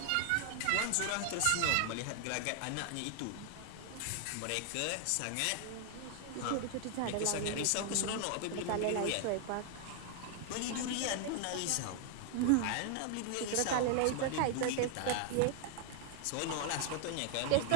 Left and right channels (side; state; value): both; different; correlation 0.00